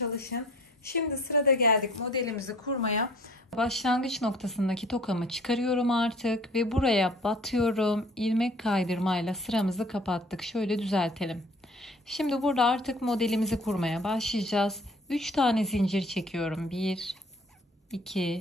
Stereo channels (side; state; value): both; normal; correlation 0.52